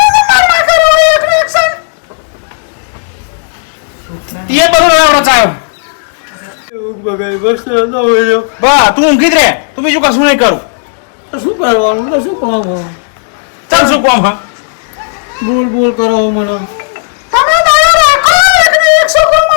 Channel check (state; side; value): silent; right; digital silence